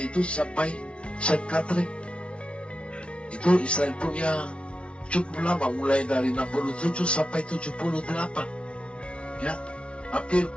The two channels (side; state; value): right; late; 0.059 ms